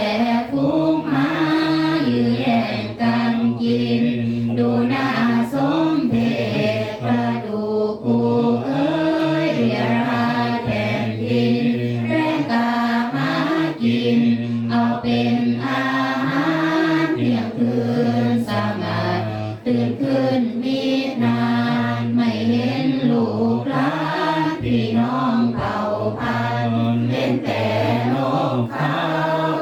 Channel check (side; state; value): both; identical; correlation 1.00